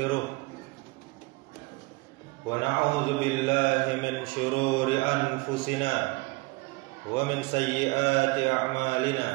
wa na'udzu billahi min shururi anfusina wa min sayyiati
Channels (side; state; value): left; quieter; 24.6 dB